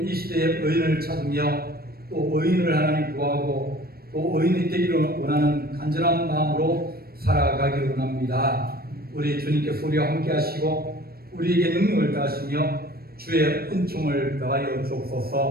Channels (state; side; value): late; left; 0.44 ms